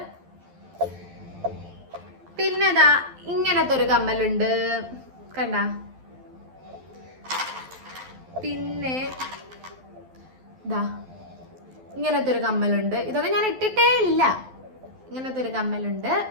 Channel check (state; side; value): late; left; 12 ms